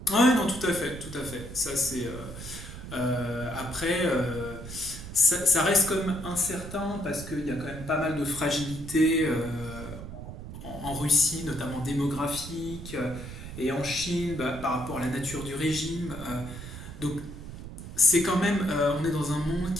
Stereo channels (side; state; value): right; noise; rumble, 11 dB below the sound